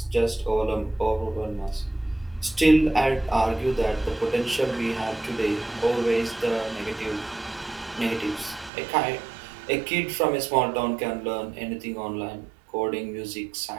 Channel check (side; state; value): left; drops out; at 8.7 s